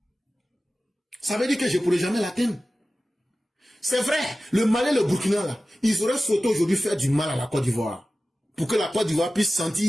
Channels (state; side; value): normal; both; correlation 0.95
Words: Ça veut dire que je ne pourrai jamais l'atteindre. C'est vrai, le Mali et le Burkina, là, ils auraient souhaité aujourd'hui faire du mal à la Côte d'Ivoire. Pour que la Côte d'Ivoire puisse